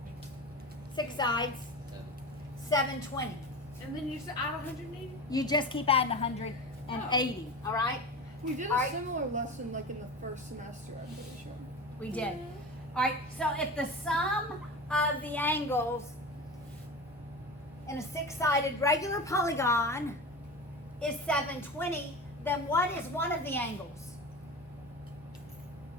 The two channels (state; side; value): normal; both; correlation 0.29